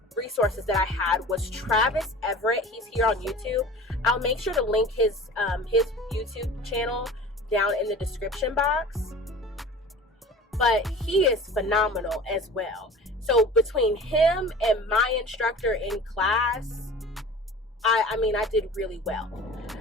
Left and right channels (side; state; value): both; normal; correlation 0.40